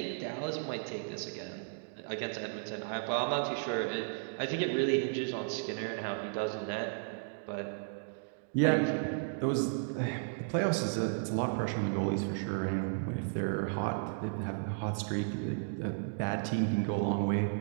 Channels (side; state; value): left; silent; digital silence